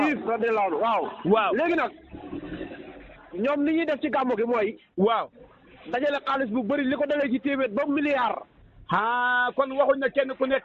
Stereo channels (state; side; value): identical; both; correlation 1.00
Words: radiyallaahu anhu waaw. waaw léegi nag ñoom li ñuy def ci gàmmu gi mooy. waaw. dajale xaalis bu bëri li ko dalee ci téeméer ba milliard. ah kon waxuñ ne kenn ku